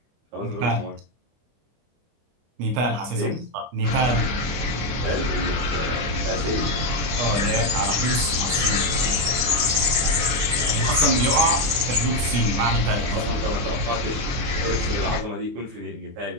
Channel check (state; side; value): late; left; 24 ms